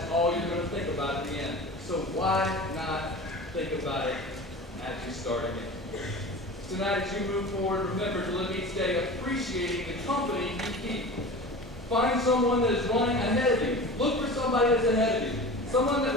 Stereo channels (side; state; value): both; normal; correlation 0.35